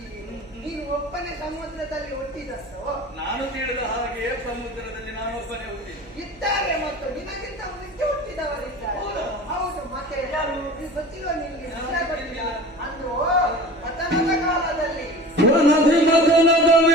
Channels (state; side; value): noise; right; hum, 23 dB below the sound